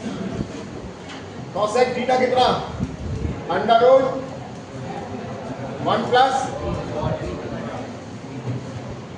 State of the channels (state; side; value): identical; both; correlation 1.00